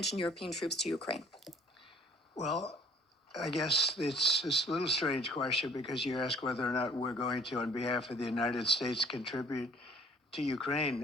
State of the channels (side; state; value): both; normal; correlation 0.54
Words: and European troops to Ukraine? Well, I guess it's a little strange question, because you ask whether or not we're going to, on behalf of the United States, contribute to